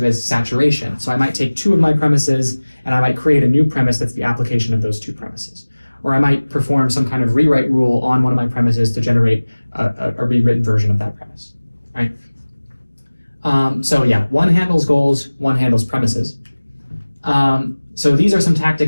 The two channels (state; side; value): inverted; both; correlation -1.00